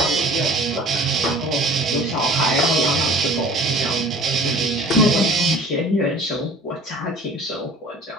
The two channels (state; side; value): normal; both; correlation 0.46